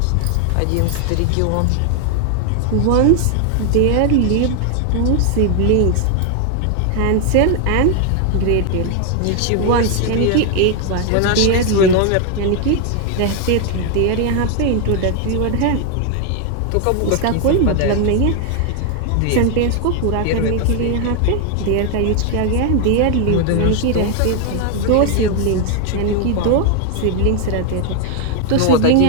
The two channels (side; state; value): both; different; correlation 0.00